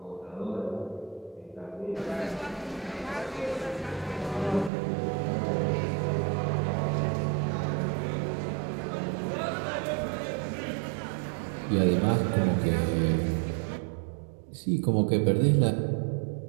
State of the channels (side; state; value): left; drops out; at 4.7 s